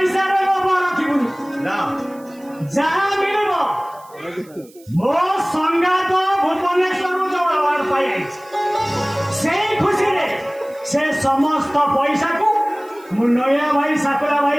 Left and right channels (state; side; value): noise; right; hiss, 27 dB below the sound